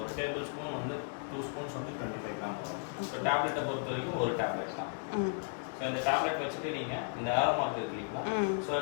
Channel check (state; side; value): silent; right; 55 dB below the other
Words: ஒரு டேபிள் ஸ்பூன் வந்து 2 ஸ்பூன்ஸ் வந்து 25 கிராம் வரும். ஸோ டேப்லெட்டை பொறுத்த வரைக்கும் ஒரு டேப்லெட் தான். ஸோ இந்த டேப்லெட் வச்சுட்டு நீங்கள் இந்த ஏரோ மார்க் இருக்கிறீங்களா, ஸோ